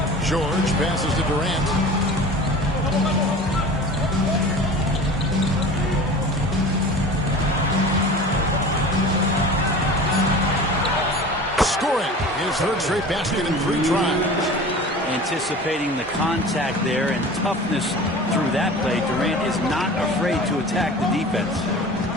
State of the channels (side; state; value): both; normal; correlation 0.38